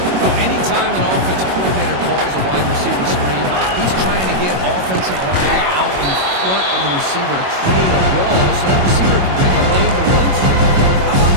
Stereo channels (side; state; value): left; late; 22 ms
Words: Well, anytime an offensive coordinator calls a wide receiver screen. He's trying to get offensive line out in front of the receiver to create a wall so that receiver can pick a lane to run through. How about